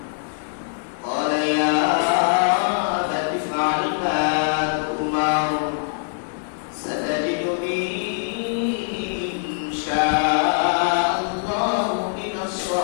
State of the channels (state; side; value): silent; right; digital silence